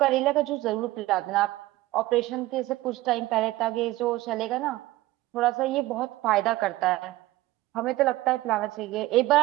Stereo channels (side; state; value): left; quieter; 17.7 dB